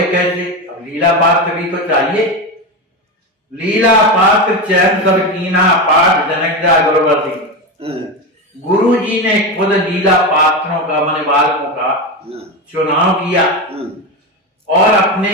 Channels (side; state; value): both; normal; correlation 0.17